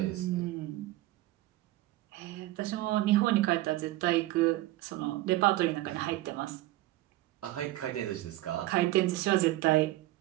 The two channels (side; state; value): left; quieter; 16.7 dB